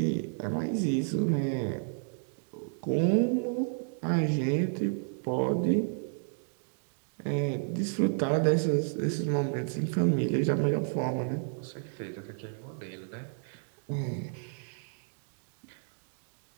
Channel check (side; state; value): left; silent; digital silence